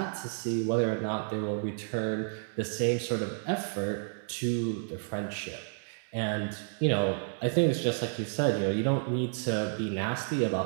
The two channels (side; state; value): left; silent; digital silence